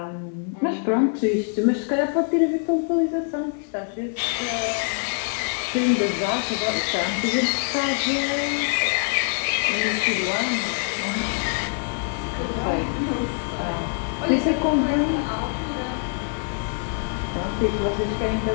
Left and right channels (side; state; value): right; silent; 56 dB below the other